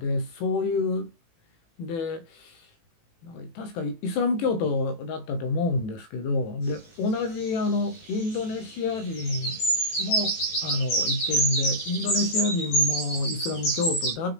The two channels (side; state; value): right; late; 18 ms